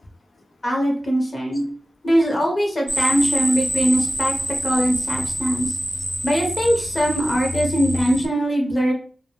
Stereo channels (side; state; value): both; normal; correlation 0.96